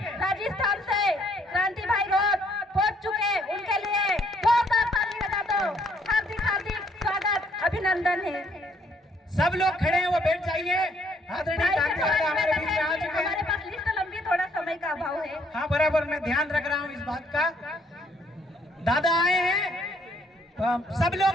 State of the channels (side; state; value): both; normal; correlation 0.67